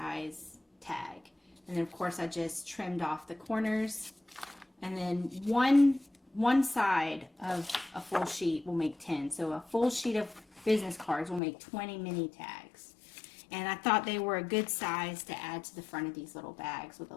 tag. And then of course I just trimmed off the corners, and then one side of a full sheet will make 10. So a full sheet of business cards will make 20 mini tags. And I thought they were a good size to add to the front of these little bags with a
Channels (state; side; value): drops out; right; at 11.4 s